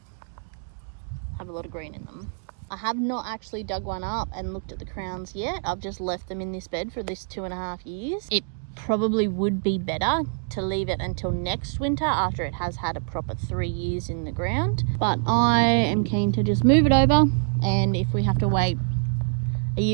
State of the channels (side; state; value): left; silent; 61 dB below the other